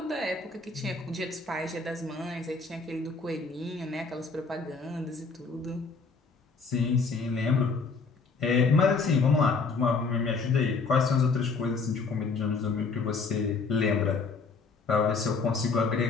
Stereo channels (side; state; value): right; quieter; 4.5 dB